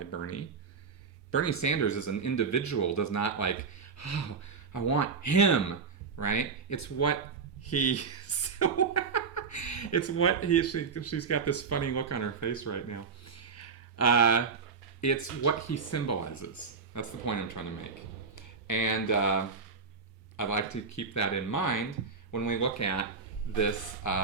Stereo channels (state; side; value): quieter; left; 5.4 dB